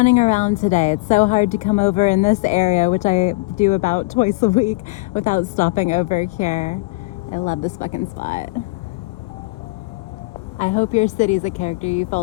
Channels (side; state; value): right; quieter; 25.1 dB